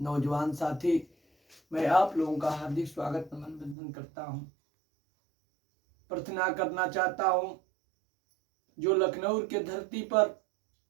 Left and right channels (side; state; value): left; drops out; at 3.8 s